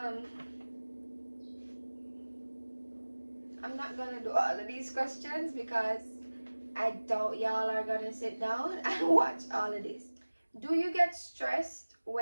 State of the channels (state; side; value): inverted; both; correlation -1.00